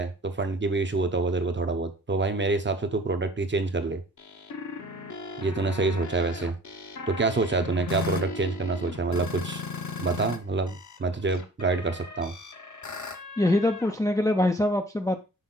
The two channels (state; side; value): normal; both; correlation 0.48